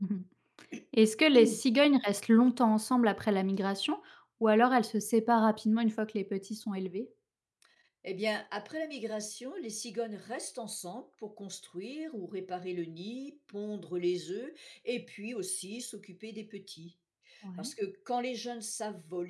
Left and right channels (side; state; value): both; identical; correlation 1.00